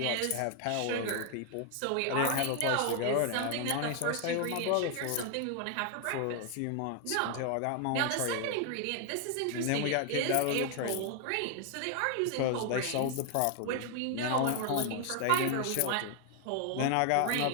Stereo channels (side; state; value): both; different; correlation 0.00